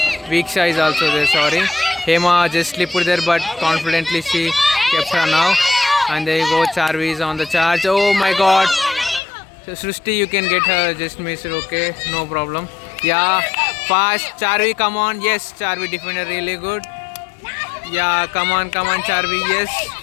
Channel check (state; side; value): drops out; right; at 9.2 s